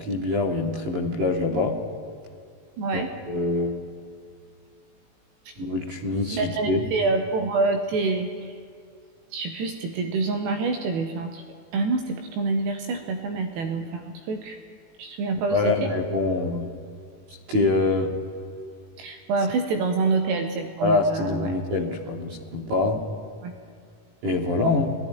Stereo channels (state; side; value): late; left; 18 ms